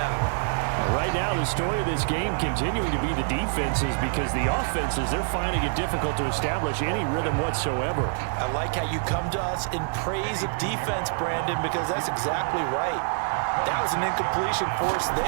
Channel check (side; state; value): left; silent; 61 dB below the other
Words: Right now, the story of this game continuing to be the defenses because the offenses, they're finding it difficult to establish any rhythm whatsoever. I like how you come to us in praise of defense, Brandon, because that's exactly right. That was an incompletion force